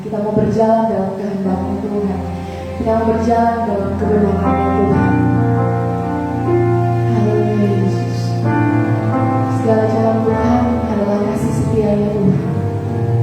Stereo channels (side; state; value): both; identical; correlation 1.00